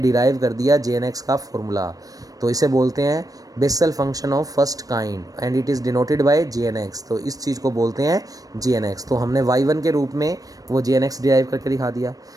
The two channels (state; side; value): late; left; 0.18 ms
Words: कर दिया जे एन एक्स का फॉर्मूला। तो इसे बोलते हैं Bessel function of first kind and it is denoted by J N X. तो इस चीज़ को बोलते हैं जे एन एक्स। तो हमने y1 के रूप में वो जे एन एक्स डिराइव करके दिखा दिया।